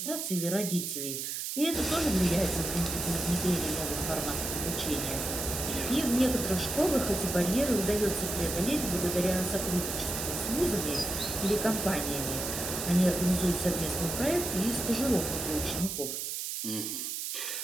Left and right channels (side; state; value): right; noise; hiss, 4 dB below the sound